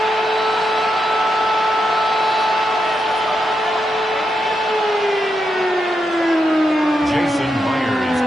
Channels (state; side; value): normal; both; correlation 0.84